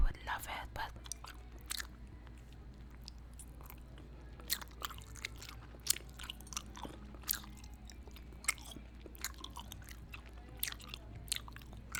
love it, but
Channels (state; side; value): identical; both; correlation 1.00